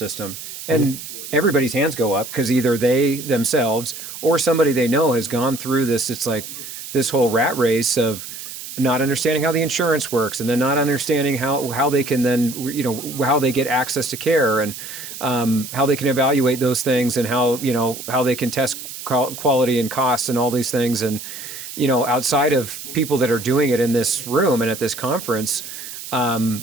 And everybody's hands go up, because either they themselves or somebody they know has gone through this. It's like this whole rat race of not understanding how the insurance works, and then not understanding how they can then, how they get access to care, and how they can evaluate those things, and how they can test quality and costs and all these things. And outside of people that are doing it in this room and at this conference,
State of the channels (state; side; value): noise; right; hiss, 11 dB below the sound